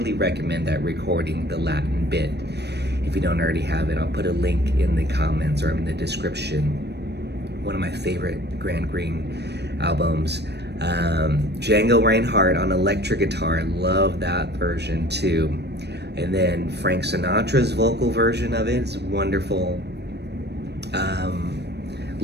recommend that recording, the Latin Bit. If you don't already have it, I'll put a link in the comments or in the description. One of my favorite Grant Green albums. Django Reinhardt on electric guitar, I love that version too. And then Frank Sinatra's vocal version of it is wonderful.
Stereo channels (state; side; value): late; left; 0.49 ms